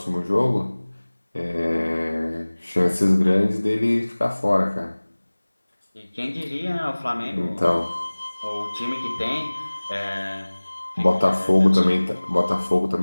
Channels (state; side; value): inverted; both; correlation -1.00